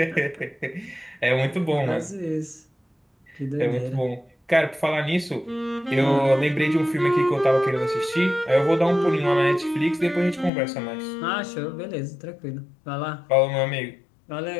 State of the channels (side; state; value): right; drops out; at 10.5 s